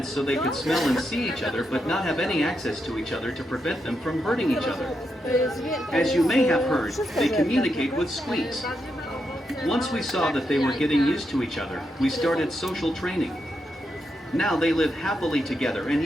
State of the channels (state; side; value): normal; both; correlation 0.83